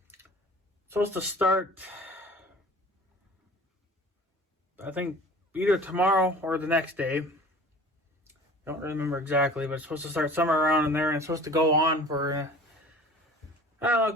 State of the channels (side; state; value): both; normal; correlation 0.43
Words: start, I think, either tomorrow or the next day. I don't remember exactly, but it's supposed to start somewhere around in there, and it's supposed to go on for I don't know, a